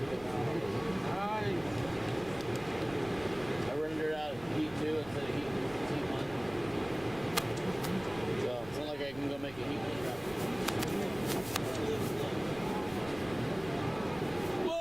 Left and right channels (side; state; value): right; noise; rumble, 18 dB below the sound